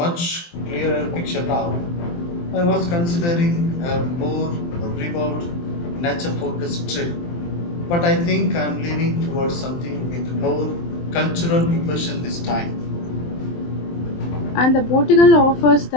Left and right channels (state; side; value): late; right; 23 ms